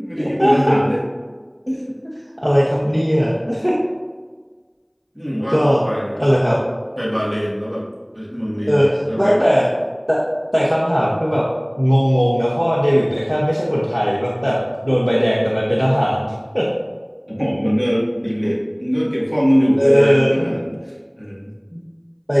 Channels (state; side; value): identical; both; correlation 1.00